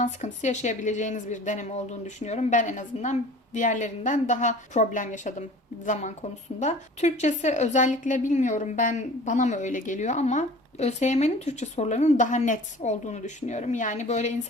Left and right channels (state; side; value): normal; both; correlation 0.44